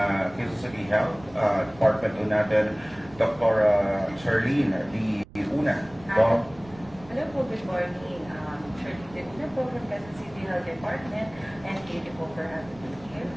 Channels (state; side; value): noise; right; rumble, 22 dB below the sound